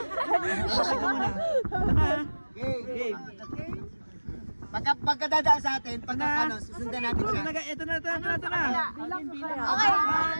ka muna. Game. Pagkadadaan sa atin, pagka susundan natin siya. Ito na. Okay.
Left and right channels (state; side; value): inverted; both; correlation -1.00